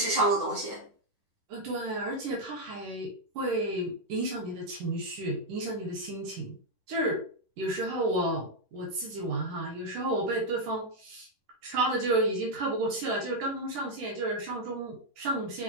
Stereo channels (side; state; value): left; late; 10 ms